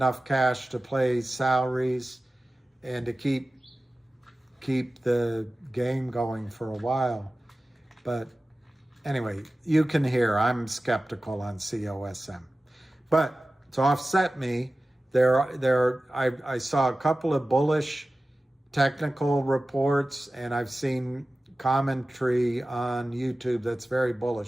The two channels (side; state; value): both; normal; correlation 0.96